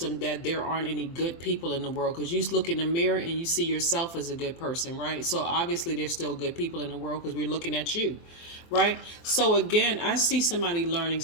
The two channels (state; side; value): late; right; 24 ms